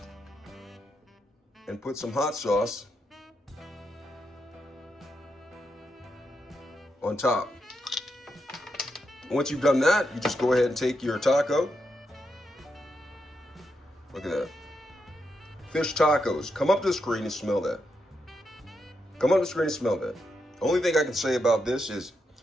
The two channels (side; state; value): both; normal; correlation 0.83